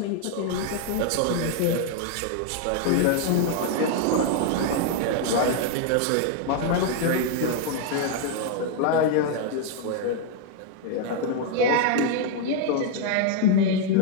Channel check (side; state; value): both; different; correlation 0.00